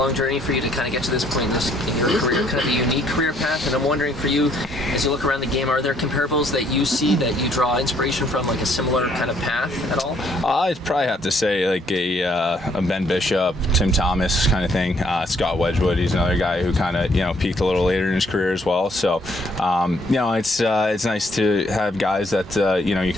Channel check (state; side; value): normal; both; correlation 0.67